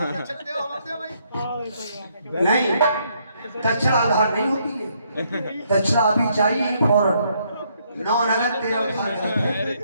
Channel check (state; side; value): inverted; both; correlation -0.71